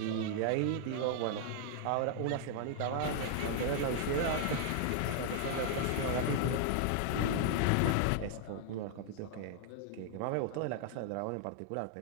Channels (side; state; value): both; different; correlation -0.01